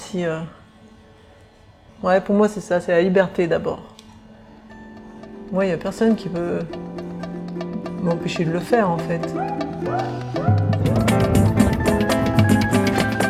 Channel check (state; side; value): identical; both; correlation 1.00